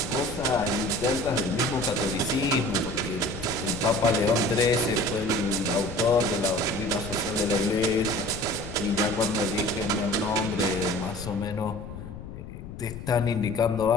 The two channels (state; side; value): noise; left; rumble, 11 dB below the sound